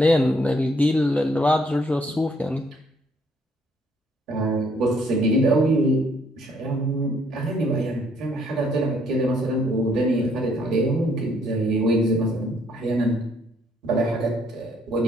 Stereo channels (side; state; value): both; normal; correlation 0.67